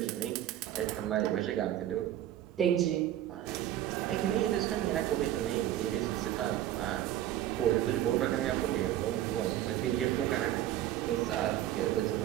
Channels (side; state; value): left; quieter; 12.7 dB